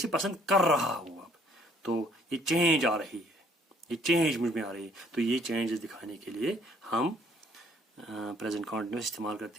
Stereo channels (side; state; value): both; normal; correlation 0.61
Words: पसंद कर रहा हूँ अब. तो ये चेंज आ रही है, ये चेंज मुझ में आ रही है. तो ये चेंजेस दिखाने के लिए हम प्रेजेंट कॉन्टिन्यूस इस्तेमाल